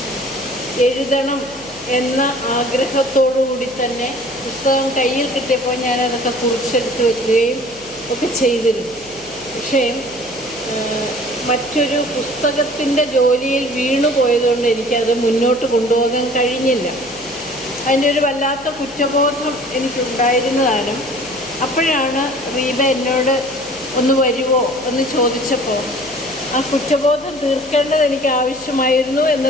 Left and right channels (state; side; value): noise; left; hum, 24 dB below the sound